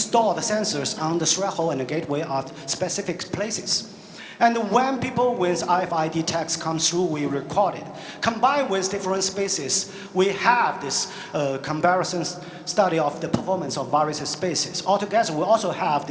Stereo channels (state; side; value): identical; both; correlation 1.00